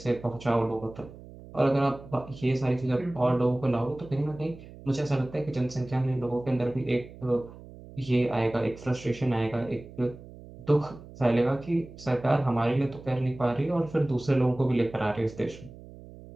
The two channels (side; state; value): right; noise; hum, 17 dB below the sound